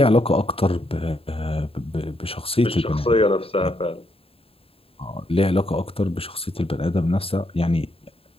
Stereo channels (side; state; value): right; late; 0.27 ms